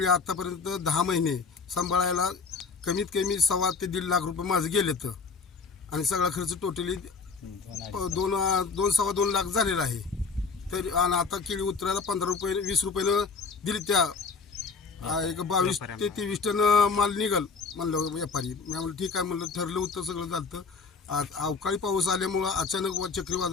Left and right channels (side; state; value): right; quieter; 4.9 dB